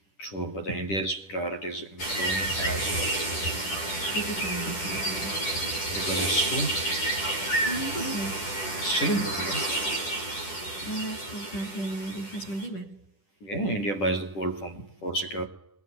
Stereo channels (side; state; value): right; late; 10 ms